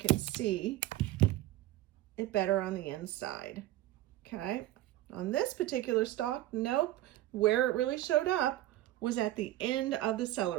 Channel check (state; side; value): quieter; left; 15.0 dB